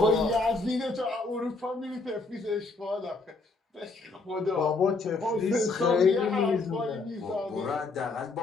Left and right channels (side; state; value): right; quieter; 3.7 dB